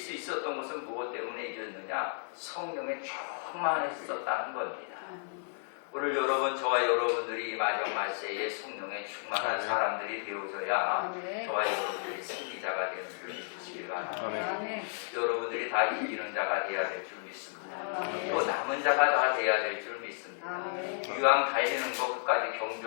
있었던 것은 무엇 때문에 이겼느냐? 성령에 충만했었다는 겁니다. 오늘 저와 여러분들이 이 마지막 말세에 성령에 충만한 사람들이 되어져야 저와 여러분들이 승리자가 되는 줄 믿으시길 바랍니다. 여러분들이 다 이기는 자가 되어야 될 줄 믿습니다. 또 남은 자가 다 되어야 될 줄 믿습니다. 이왕 달리는 것 끝까지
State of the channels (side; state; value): right; silent; 56 dB below the other